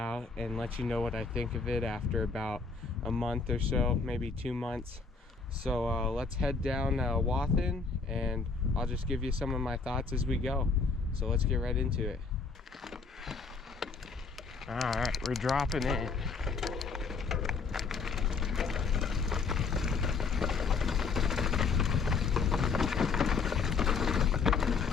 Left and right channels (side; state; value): right; quieter; 4.7 dB